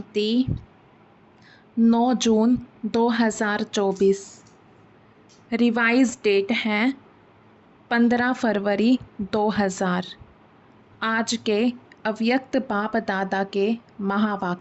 9 जून 2024। रिवाइज डेट है 15 फरवरी 2000। आज के अव्यक्त बाप दादा के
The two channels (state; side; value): identical; both; correlation 1.00